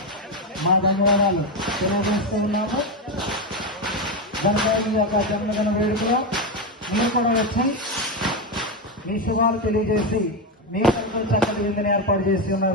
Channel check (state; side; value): normal; both; correlation 0.11